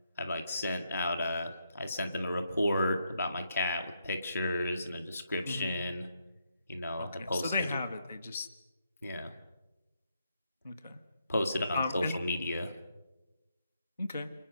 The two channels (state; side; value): inverted; both; correlation -0.79